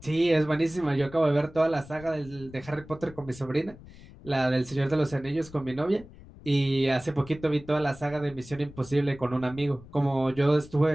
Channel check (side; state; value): left; noise; rumble, 19 dB below the sound